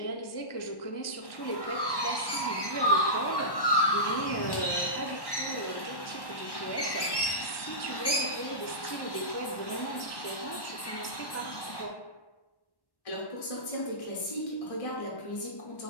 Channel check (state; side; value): late; right; 1.1 ms